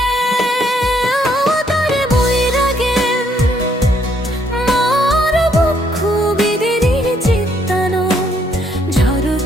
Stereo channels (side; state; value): both; normal; correlation 0.69